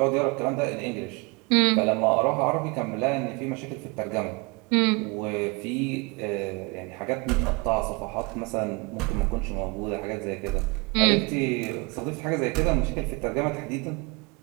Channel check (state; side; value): quieter; left; 28.5 dB